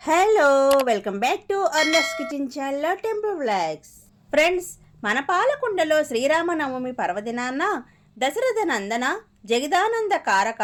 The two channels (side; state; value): both; identical; correlation 1.00